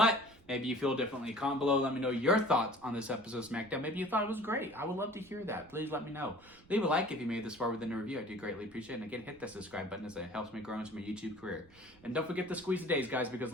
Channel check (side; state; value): right; noise; rumble, 27 dB below the sound